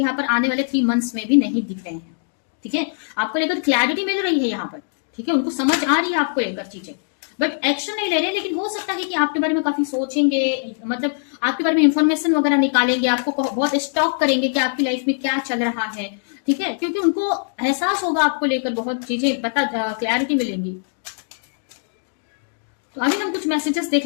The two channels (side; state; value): right; silent; digital silence